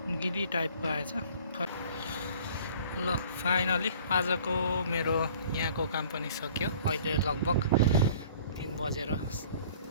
गिरी टाइपको आएछ। ल फाइनली आजको मेरो यहाँको काम पनि सक्यो। अहिले लगभग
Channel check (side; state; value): both; inverted; correlation -0.51